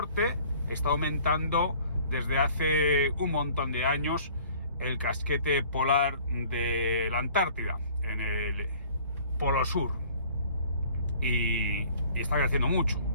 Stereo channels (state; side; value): inverted; both; correlation -0.52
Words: está aumentando desde hace un montón de años el casquete polar de la Antártida, en el Polo Sur, y está creciendo mucho,